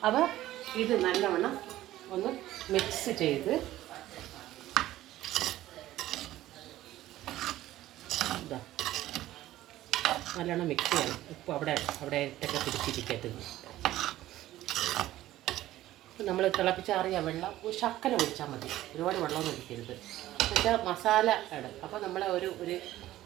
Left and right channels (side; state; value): left; quieter; 14.7 dB